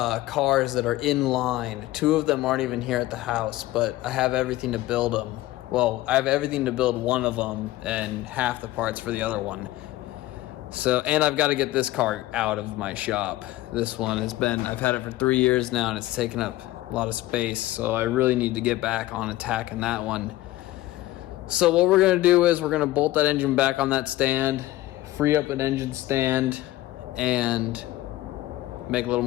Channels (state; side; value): quieter; right; 16.7 dB